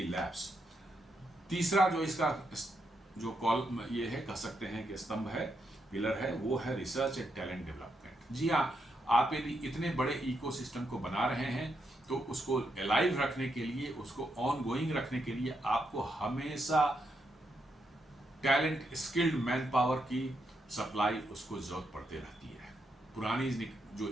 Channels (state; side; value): normal; both; correlation 0.81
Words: labs. तीसरा जो इसका जो कॉल ये है, कह सकते हैं कि स्तंभ है, पिलर है, वो है रिसर्च एंड टैलेंट डेवलपमेंट। जी हाँ, आप यदि इतने बड़े इकोसिस्टम को बना रहे हैं तो उसको अलाइव रखने के लिए, उसको ऑन गोइंग रखने के लिए आपको हमेशा टैलेंट, स्किल्ड मैन पावर की सप्लाई उसको जरूरत पड़ती रहती है। पुरानी जो